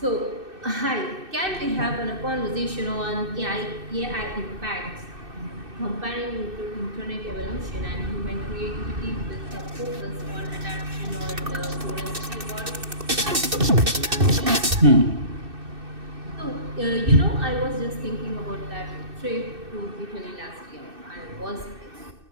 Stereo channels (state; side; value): late; left; 2.6 ms